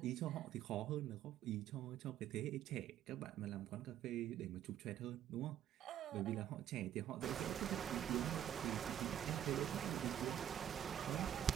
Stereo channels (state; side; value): quieter; left; 10.7 dB